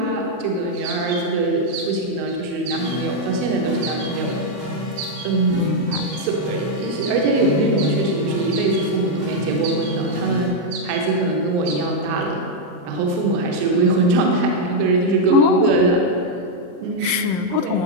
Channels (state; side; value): late; left; 40 ms